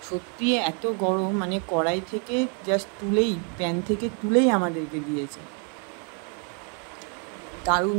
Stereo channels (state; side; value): quieter; left; 38.6 dB